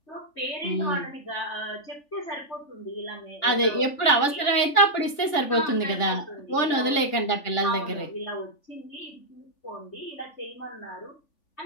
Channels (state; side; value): late; right; 3.4 ms